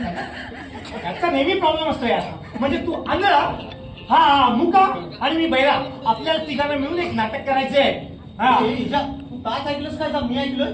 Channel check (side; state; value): both; identical; correlation 1.00